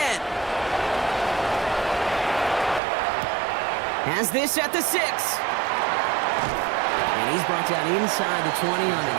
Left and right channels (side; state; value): left; drops out; at 2.8 s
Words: Has this at the 6. And he's brought down inside the 20 on